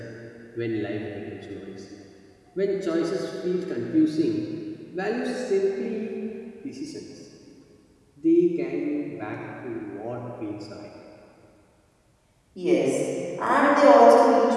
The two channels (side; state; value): both; identical; correlation 1.00